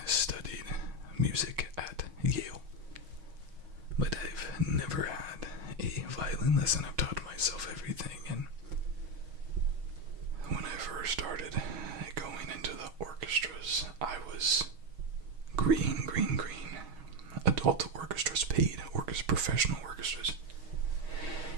studied music at Yale, but I've never had a violin lesson. I've taught myself everything, and when I first started going into the orchestras, I was green. Adult orchestras, paid professional orchestras.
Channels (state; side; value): late; left; 6.3 ms